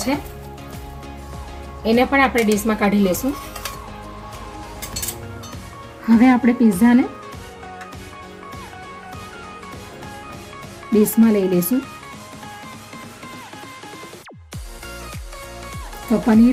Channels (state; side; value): identical; both; correlation 1.00